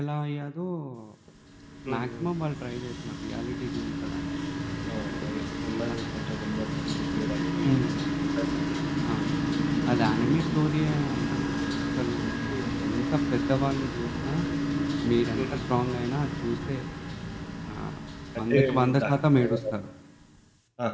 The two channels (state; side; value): identical; both; correlation 1.00